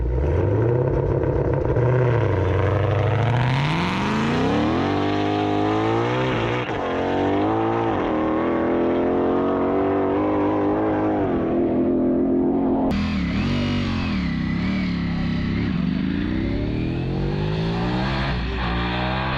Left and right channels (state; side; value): identical; both; correlation 1.00